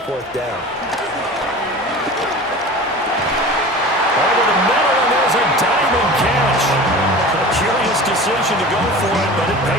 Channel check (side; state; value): both; normal; correlation 0.37